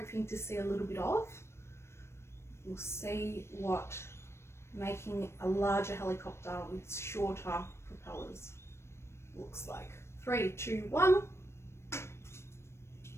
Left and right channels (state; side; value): late; right; 0.13 ms